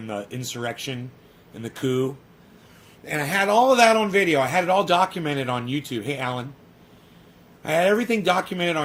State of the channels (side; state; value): both; identical; correlation 1.00